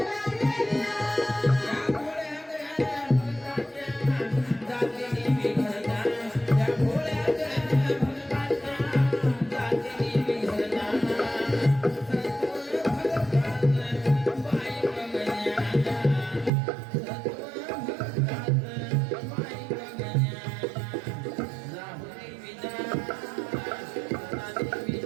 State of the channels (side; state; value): left; drops out; at 16.5 s